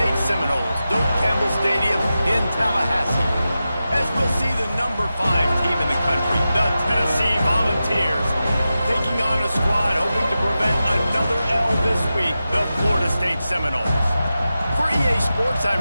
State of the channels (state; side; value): inverted; both; correlation -0.92